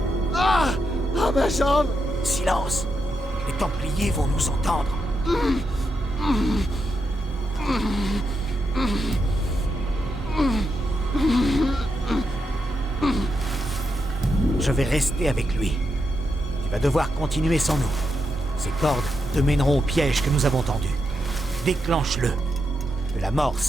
Ah! Ah, ma jambe! Silence. Les Templiers vont nous entendre. Je vais rester avec lui. Tu vas devoir continuer sans nous. Ces cordes te mèneront au piège que nous avons tendu. Déclenche-le. Que la mort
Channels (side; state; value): both; normal; correlation 0.84